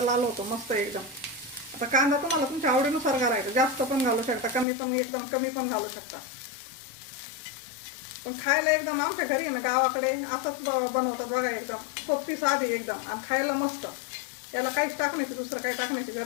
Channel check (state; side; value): drops out; right; at 4.7 s